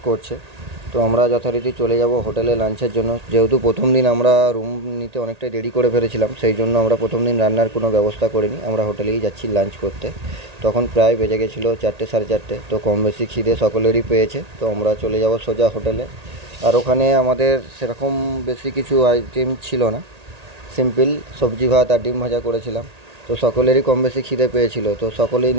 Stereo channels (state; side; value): late; left; 1.8 ms